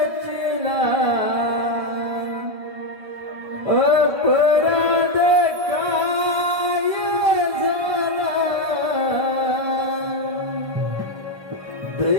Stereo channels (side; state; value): left; late; 1.2 ms